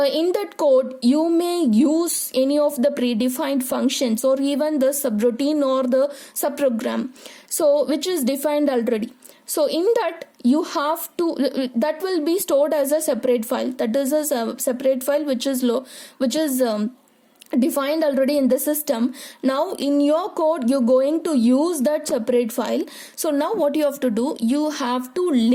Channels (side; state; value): both; identical; correlation 1.00